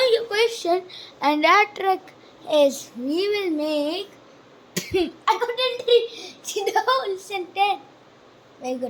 your question, and that trick is we will make. I couldn't see the whole sentence. Very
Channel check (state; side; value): identical; both; correlation 1.00